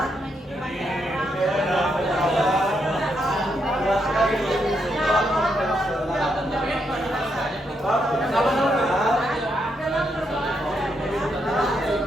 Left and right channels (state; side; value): normal; both; correlation 0.79